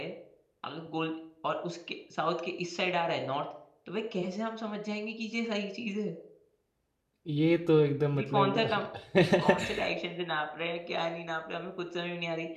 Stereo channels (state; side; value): identical; both; correlation 1.00